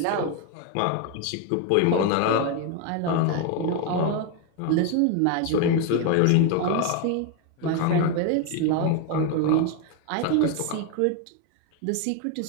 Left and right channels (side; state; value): both; different; correlation 0.01